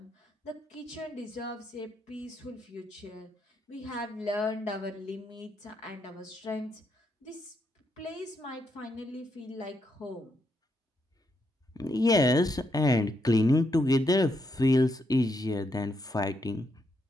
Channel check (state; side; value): normal; both; correlation 0.79